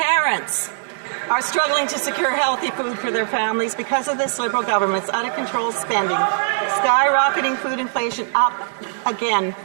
are struggling to secure healthy food for their families because of this Liberal government's out-of-control spending, skyrocketing food inflation up again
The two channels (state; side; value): silent; left; 65 dB below the other